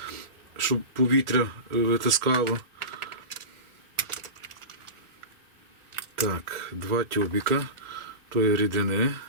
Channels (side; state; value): left; late; 1.4 ms